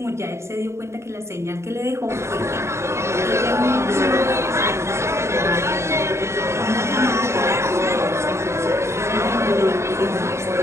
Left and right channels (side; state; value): left; late; 0.13 ms